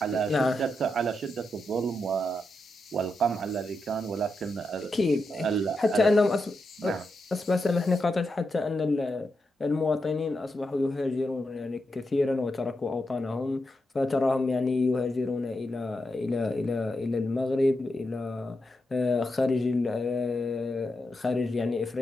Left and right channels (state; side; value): normal; both; correlation 0.86